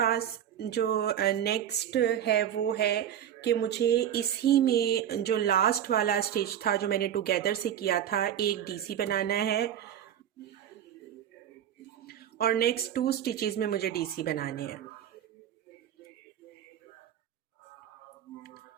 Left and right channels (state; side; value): quieter; left; 10.1 dB